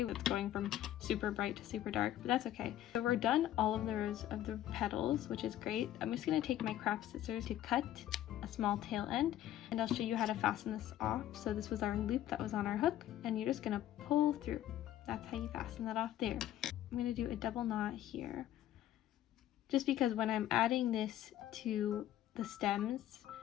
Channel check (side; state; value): right; quieter; 12.5 dB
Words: It's going from super bright to super dark, but that's okay. So we're done all of the rows of the petals, which is great. I'm just going to take my craft scissors to cut a small tail end, and I'll show you how to fasten this off. So this was our loop that was on our hook, and you're just going to pull through. That's how you fasten that off there. I'm going to do a double knot here, just because when I'm adding this to the stems,